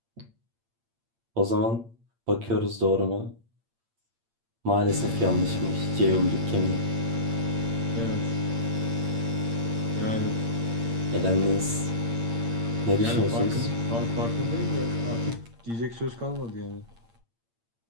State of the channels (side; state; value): left; late; 8.7 ms